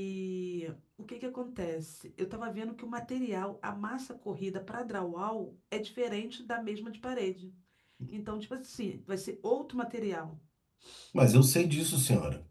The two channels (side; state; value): both; identical; correlation 1.00